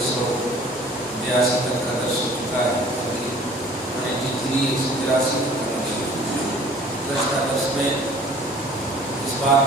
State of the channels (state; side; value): normal; both; correlation 0.50